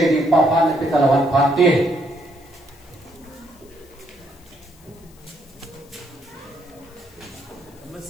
dựng ba phát để ta làm phát tiên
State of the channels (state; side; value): noise; left; hiss, 27 dB below the sound